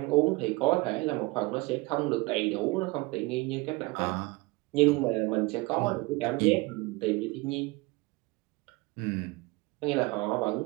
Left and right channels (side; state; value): left; quieter; 24.0 dB